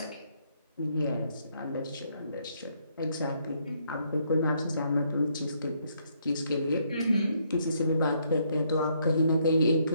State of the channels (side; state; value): both; inverted; correlation -0.72